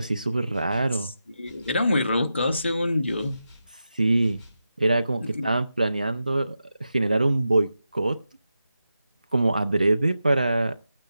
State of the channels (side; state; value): both; inverted; correlation -0.89